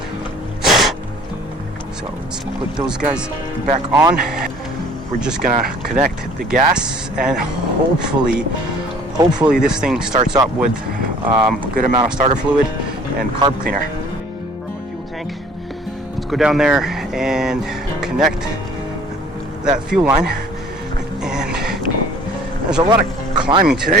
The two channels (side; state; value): both; normal; correlation 0.53